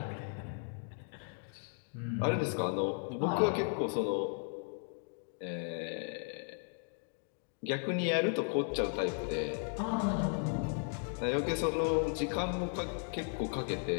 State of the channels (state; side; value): silent; right; 54 dB below the other